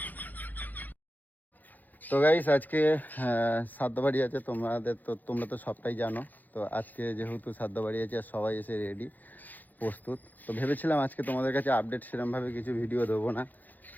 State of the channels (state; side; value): late; right; 0.084 ms